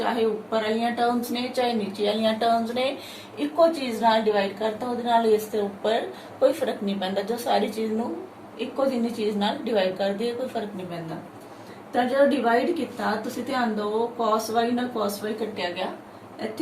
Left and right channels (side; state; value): both; identical; correlation 1.00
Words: ऊपर वाली टर्म्स ने चाहे नीचे वाली टर्म्स ने इको चीज नाल डिवाइड करता, उहदे नाल इस दे ऊपर कोई फर्क नहीं पैंदा। जो सारी चीज नू इको जिन्नी चीज नाल डिवाइड कर दी कोई फर्क नहीं पैंदा। तो जो डिवाइड किया तुसी ध्यान दो, cos y नाल cos y कटिया गया,